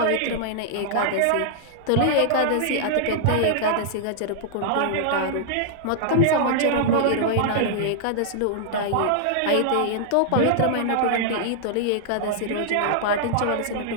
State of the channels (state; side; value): different; both; correlation -0.01